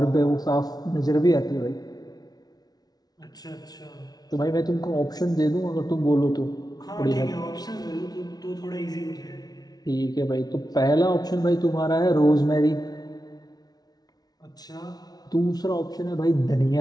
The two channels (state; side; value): late; right; 0.19 ms